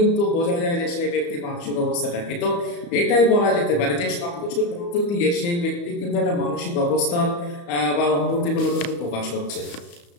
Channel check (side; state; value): right; late; 35 ms